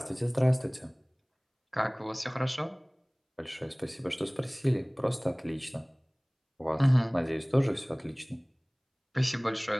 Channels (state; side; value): identical; both; correlation 1.00